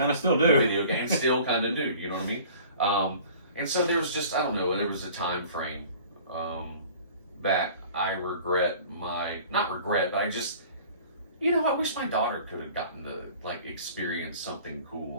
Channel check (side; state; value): both; inverted; correlation -0.47